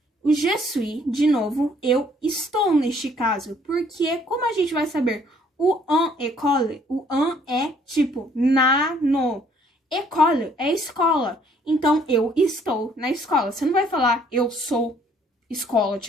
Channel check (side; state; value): both; normal; correlation 0.62